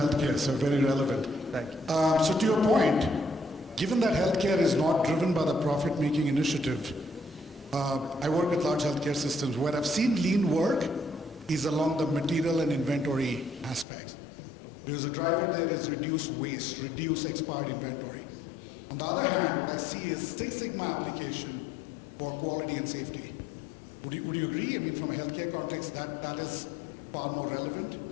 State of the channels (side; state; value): right; drops out; at 13.9 s